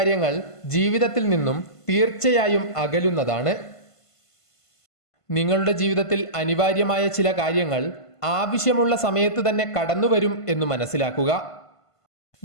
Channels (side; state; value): right; late; 1.5 ms